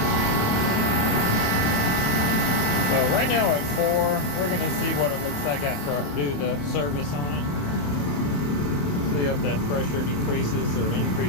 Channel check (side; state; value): right; late; 27 ms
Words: So right now at 4, we're going to see what it looks like after I do the service on it. See if that pressure decreases or